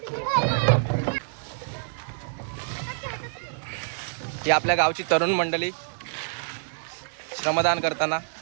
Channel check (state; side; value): silent; left; digital silence